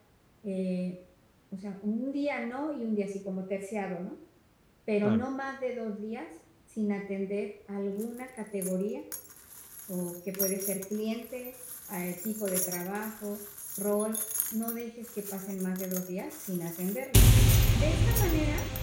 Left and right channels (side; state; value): both; identical; correlation 1.00